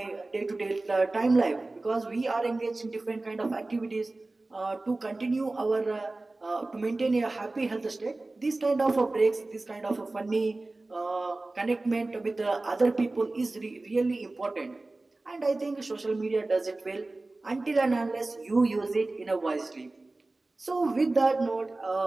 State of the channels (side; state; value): left; quieter; 3.1 dB